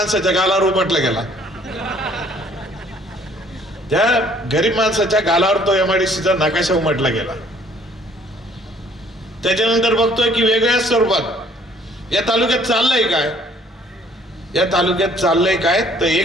गालावर उपटला गेला. त्या गरीब माणसाच्या गालावर तो MIDCचा नकाशा उमटला गेला. त्याच्यानंतर बघतोय की वेगळ्या स्वरूपात या तालुक्यात चाललंय काय, या तालुक्यात चाललंय काय तर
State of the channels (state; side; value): normal; both; correlation 0.59